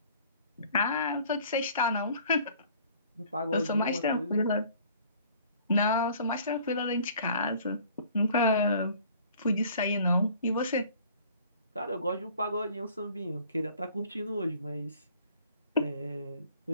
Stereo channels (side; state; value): both; inverted; correlation -0.53